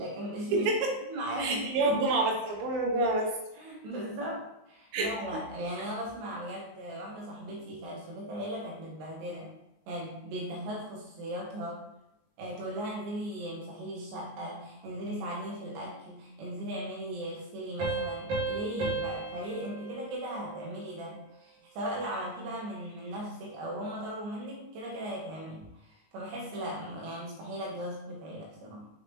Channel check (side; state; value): left; late; 19 ms